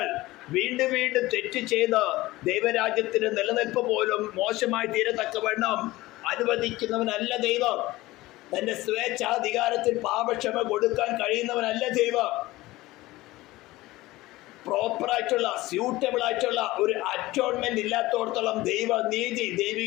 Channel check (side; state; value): right; quieter; 18.6 dB